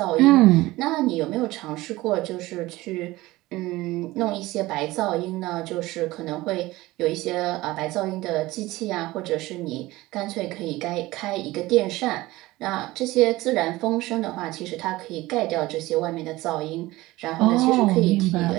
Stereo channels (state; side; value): quieter; left; 18.8 dB